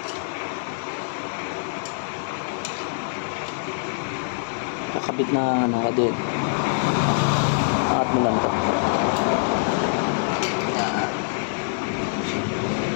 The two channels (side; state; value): right; silent; 62 dB below the other